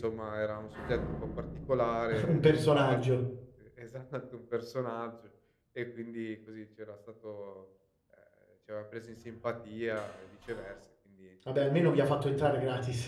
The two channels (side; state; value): both; identical; correlation 1.00